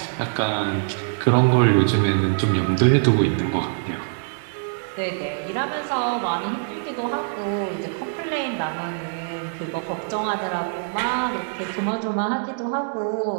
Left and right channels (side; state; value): left; silent; 63 dB below the other